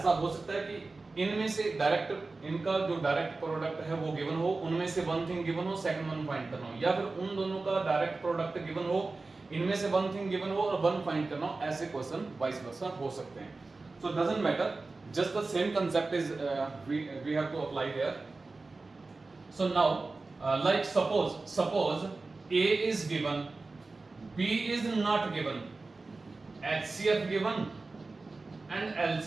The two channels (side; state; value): left; quieter; 3.6 dB